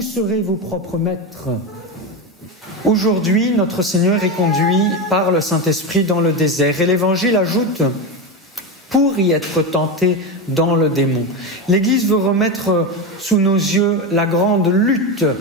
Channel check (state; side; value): normal; both; correlation 0.16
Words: serez vos propres maîtres. Aujourd'hui, notre Seigneur est conduit par le Saint-Esprit dans le désert et l'Évangile ajoute « pour y être tenté dans le démon ». L'Église veut remettre sous nos yeux la grande lutte